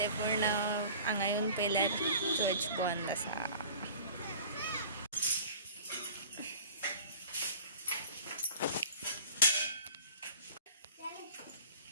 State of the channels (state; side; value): inverted; both; correlation -0.44